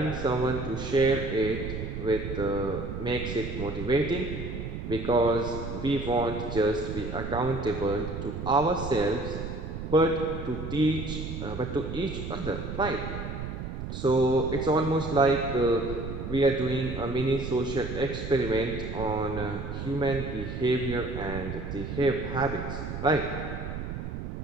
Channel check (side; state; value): right; noise; rumble, 6 dB below the sound